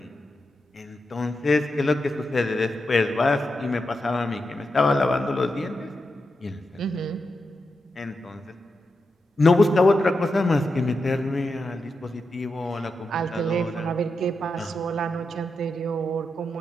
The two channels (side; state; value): both; normal; correlation 0.87